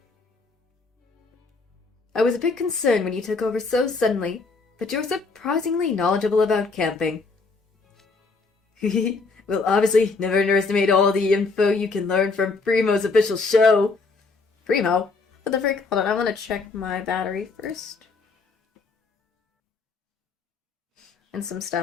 I was a bit concerned when you took over so suddenly, but you're surprisingly knowledgeable about camping. Well, obviously, never underestimate all the info you can learn from Primo's official show. Primo? What the frick? Hold on, I want to check my battery first. And some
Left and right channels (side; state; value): right; quieter; 4.1 dB